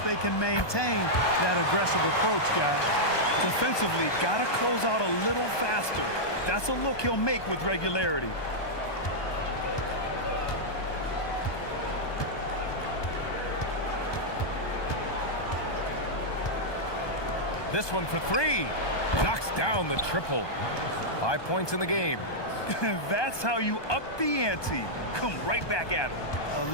they can maintain that aggressive approach, guys. Defensively, got to close out a little faster. That's a look he'll make with regularity. This one for 3. Knocks down the triple. 5 points in the game. That's how you up the ante. Come right back at him. A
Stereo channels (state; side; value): late; right; 1.2 ms